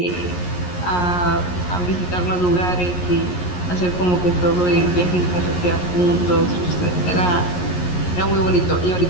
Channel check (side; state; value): right; late; 11 ms